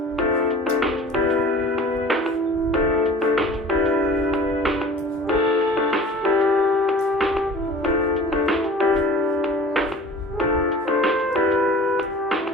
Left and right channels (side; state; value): both; normal; correlation 0.43